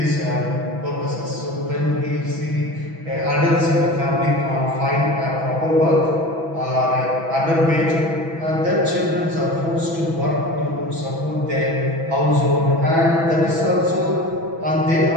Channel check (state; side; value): late; left; 6.1 ms